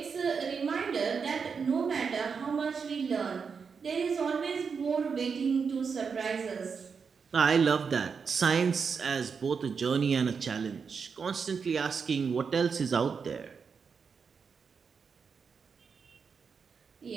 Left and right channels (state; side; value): quieter; left; 5.8 dB